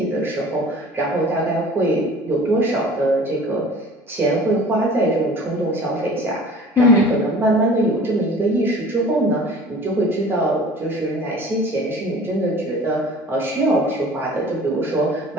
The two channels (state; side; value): normal; both; correlation 0.45